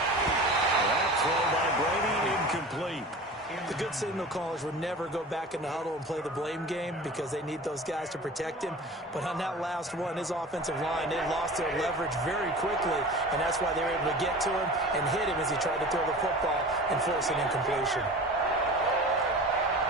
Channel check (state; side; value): normal; both; correlation 0.37